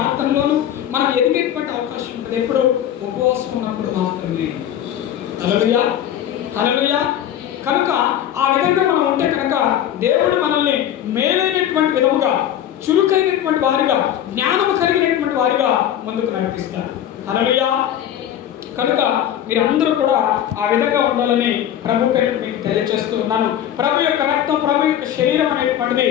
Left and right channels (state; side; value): quieter; right; 10.8 dB